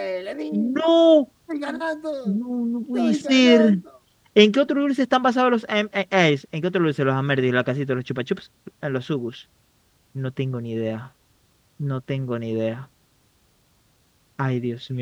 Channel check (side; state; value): both; identical; correlation 1.00